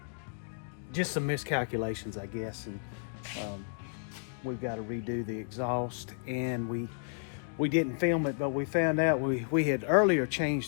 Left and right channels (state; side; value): silent; right; digital silence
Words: just some miscalculations, I guess, and we've got to redo the exhaust. And we didn't film it, but we found out we had earlier